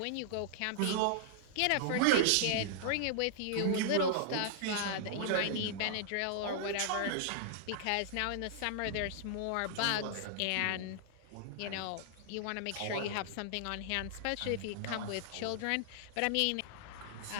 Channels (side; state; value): both; different; correlation -0.01